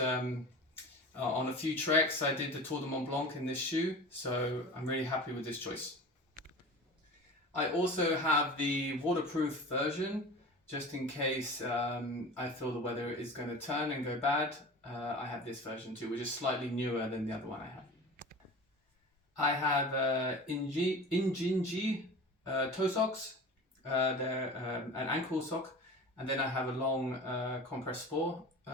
on a few treks. I did the Tour de Mont Blanc in this shoe, so I'm really happy with this choice. I also have the waterproof version, just in case I feel the weather is going to turn and go bad. I have this version too, which is slightly newer than the other one I have. I have Injinji toe socks. They're an ankle sock, and then I have a long compress sport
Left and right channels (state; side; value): normal; both; correlation 0.35